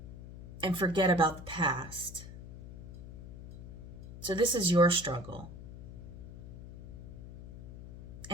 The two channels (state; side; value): noise; left; hum, 13 dB below the sound